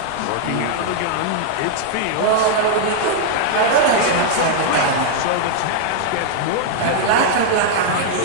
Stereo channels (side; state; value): both; different; correlation -0.01